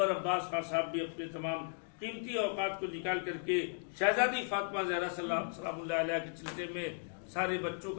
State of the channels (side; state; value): right; silent; digital silence